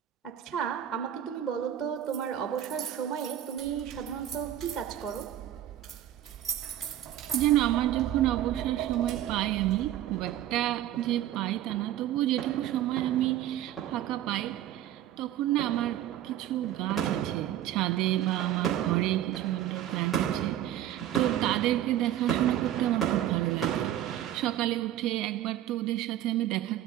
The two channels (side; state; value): left; quieter; 12.2 dB